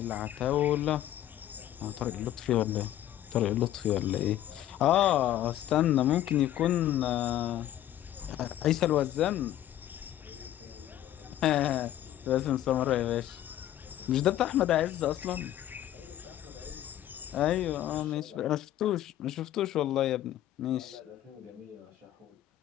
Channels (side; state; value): right; quieter; 12.5 dB